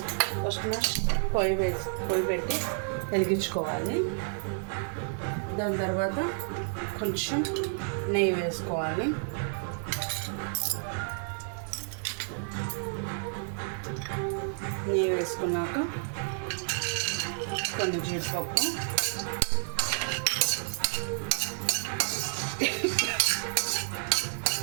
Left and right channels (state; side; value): silent; left; 58 dB below the other